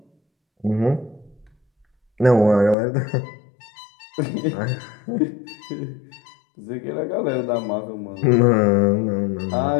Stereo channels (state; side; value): drops out; right; at 2.8 s